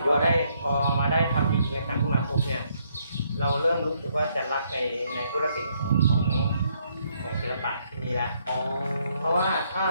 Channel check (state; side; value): inverted; both; correlation -0.72